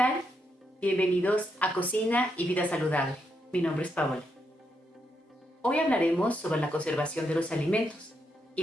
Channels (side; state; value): both; normal; correlation 0.80